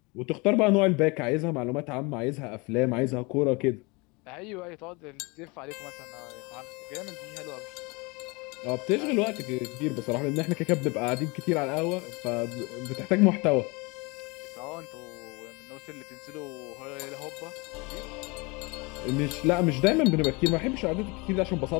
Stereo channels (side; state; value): right; quieter; 27.3 dB